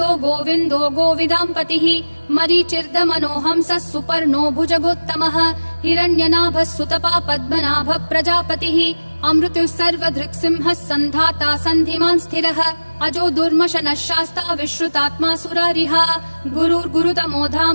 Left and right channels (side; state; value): both; inverted; correlation -1.00